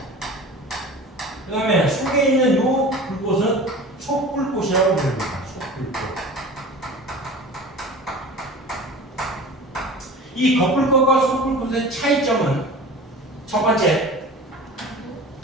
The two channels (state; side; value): normal; both; correlation 0.37